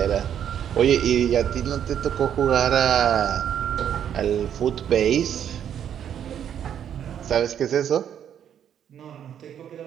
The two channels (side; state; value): left; quieter; 9.3 dB